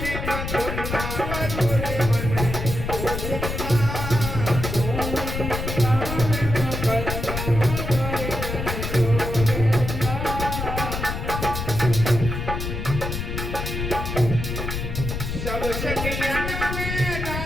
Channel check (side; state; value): left; noise; rumble, 4 dB below the sound